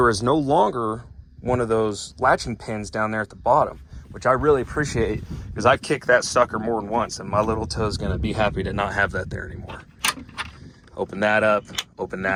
is no longer one of those latching pins down there at the bottom, which I really appreciate because I've kicked that sucker more than once and my little toe is gonna be happy to not have that there anymore. Open that up,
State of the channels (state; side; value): identical; both; correlation 1.00